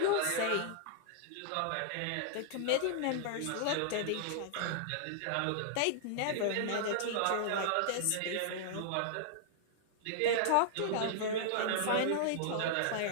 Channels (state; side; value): different; both; correlation -0.01